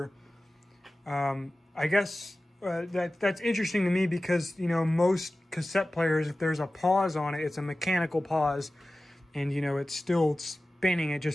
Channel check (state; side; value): normal; both; correlation 0.96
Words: I guess that's interesting to me because, you know, most cassette players, if there's a pause on it, it's a mechanical pause, and, you know, it's still spinning. It